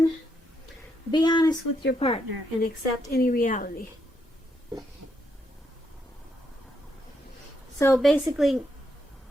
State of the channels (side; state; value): both; normal; correlation 0.78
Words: be honest with your partner and accept any reality. So basically,